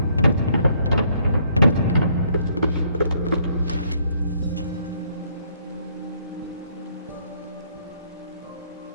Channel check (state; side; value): inverted; both; correlation -0.67